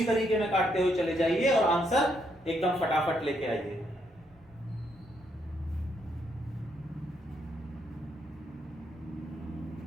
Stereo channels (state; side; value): normal; both; correlation 0.75